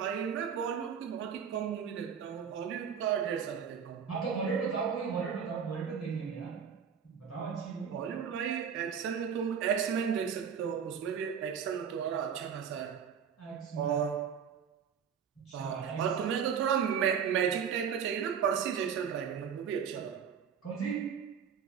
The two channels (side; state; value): left; quieter; 7.4 dB